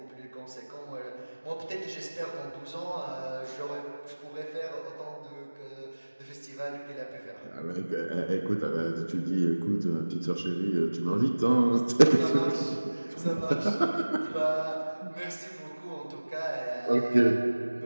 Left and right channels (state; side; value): inverted; both; correlation -1.00